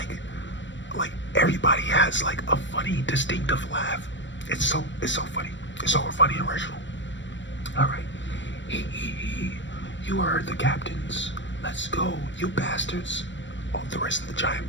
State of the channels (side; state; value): right; late; 0.54 ms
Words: everybody has like a funny, distinctive laugh. It's so funny. It's so funny and original. Alright. You are the captains. Let's go, you bastards. All the rest of the giant